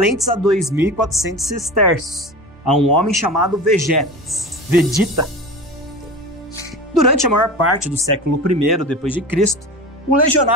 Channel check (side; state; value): both; normal; correlation 0.31